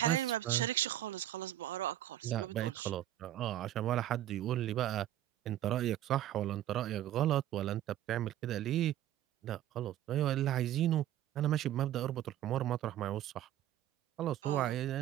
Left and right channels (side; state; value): left; quieter; 12.6 dB